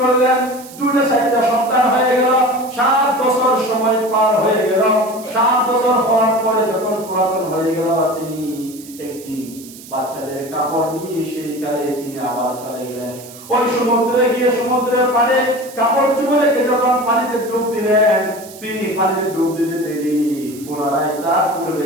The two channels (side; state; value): right; noise; hiss, 18 dB below the sound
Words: করলেন, 2-4টা সন্তান হয়ে গেল, 7 বছর সময় পার হয়ে গেল। 7 বছর হওয়ার পরে যখন পুরাতন হয়ে গেল, তিনি একদিন বাচ্চাদের কাপড় নিয়ে সেই কালে তিনি আবার চলে গেলেন ওই সমুদ্রে গিয়ে সমুদ্রের পাড়ে কাপড় চুপে রেখে যখন পানিতে ডুব দিলেন, তিনি পানিতে ডুব দিতে দেরি, পুনরায় তার